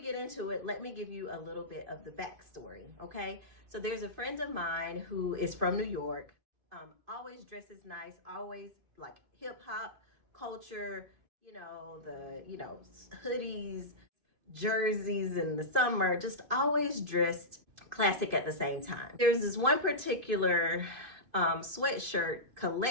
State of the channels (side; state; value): left; late; 2.5 ms